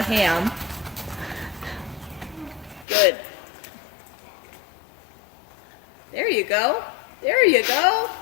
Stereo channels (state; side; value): drops out; right; at 2.9 s